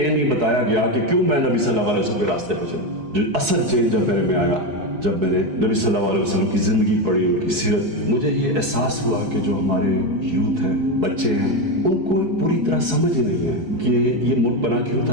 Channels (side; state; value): left; late; 4.7 ms